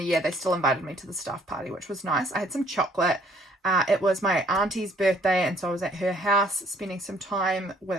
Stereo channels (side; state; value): both; normal; correlation 0.62